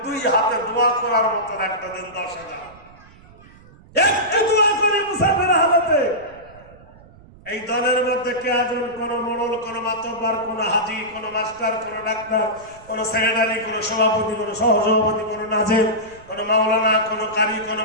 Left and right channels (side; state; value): right; noise; rumble, 24 dB below the sound